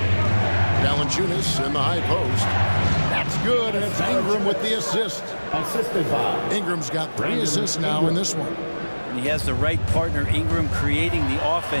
Valanciunas in the high post. That's good, and it's Ingram with the assist. Assisted by Ingram's got 3 assists now in this one. And he has the right partner, Ingram, creating the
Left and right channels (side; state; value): both; inverted; correlation -1.00